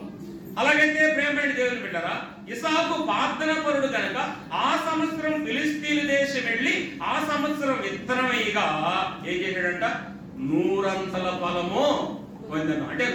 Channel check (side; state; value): both; identical; correlation 1.00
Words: అలాగైతే ప్రియమైన దేవుని బిడ్డలారా, ఇస్సాకు ప్రార్థన పరుడు కనుక ఆ సంవత్సరం ఫిలిస్తీన్ దేశం వెళ్ళి ఆ సంవత్సరం విత్తనమయ్యగా ఏం చేశాడంట? 100 ఫలము పొందను. అంటే